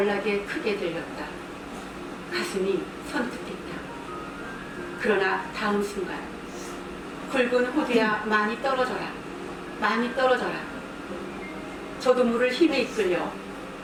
크게 들렸다. 가슴이 선뜻했다. 그러나 다음 순간 굵은 호두야 많이 떨어져라, 많이 떨어져라. 저도 물을 힘에 이끌려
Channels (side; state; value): both; identical; correlation 1.00